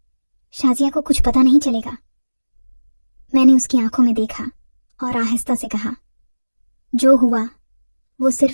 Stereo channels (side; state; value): both; inverted; correlation -1.00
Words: शाजिया को कुछ पता नहीं चलेगा। मैंने उसकी आंखों में देखा और आहिस्ता से कहा, जो हुआ वो